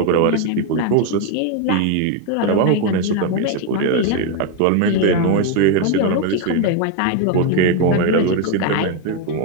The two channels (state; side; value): different; both; correlation 0.02